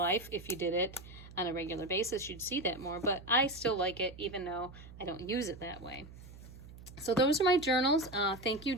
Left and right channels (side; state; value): right; noise; hum, 17 dB below the sound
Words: If you did it on a regular basis, you'd see that more. But I still like it, even though I don't use it that way. So those are my journals. Thank you,